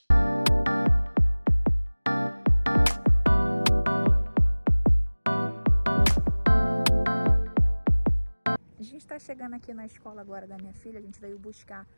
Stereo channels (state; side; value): inverted; both; correlation -1.00